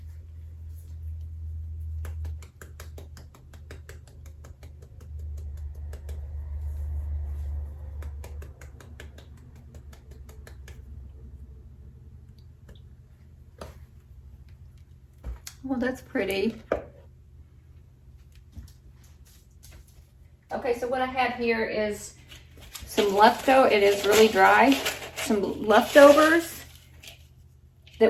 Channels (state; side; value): identical; both; correlation 1.00